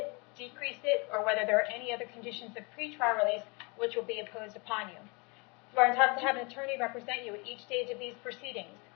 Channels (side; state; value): right; quieter; 30.2 dB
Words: decrease it, or whether there are any other conditions of pretrial release which will be imposed upon you. You are entitled to have an attorney represent you at each stage of these proceedings.